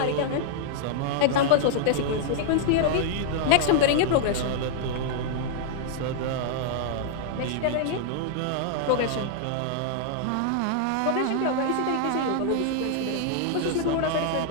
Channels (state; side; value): different; both; correlation -0.01